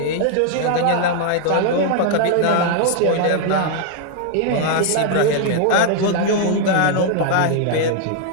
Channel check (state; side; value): different; both; correlation 0.00